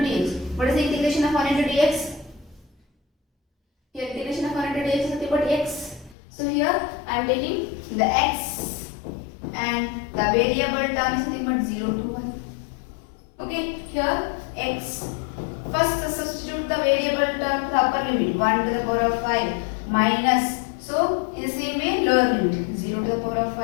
dx. What is the integration of 1 into dx? Here integration of 1 into dx is nothing but x. So here I am taking the x and the variable term is nothing but 0 to 1. Okay, here x. First substitute the variable term to the upper limit, 1 to the power of 5 minus. So in the same way lower limit, 0 to the power of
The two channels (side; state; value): right; drops out; at 6.2 s